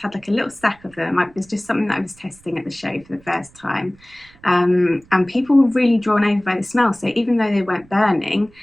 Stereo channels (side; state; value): right; noise; rumble, 28 dB below the sound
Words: had like a little stack of them. It was just something that I was testing at the show for the first time. And people were really drawn over by the smell. So even though they weren't burning,